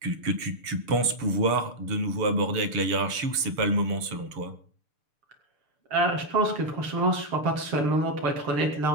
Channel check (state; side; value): late; left; 6.8 ms